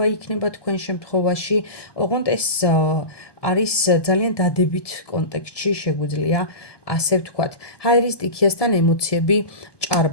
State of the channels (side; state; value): right; late; 1.2 ms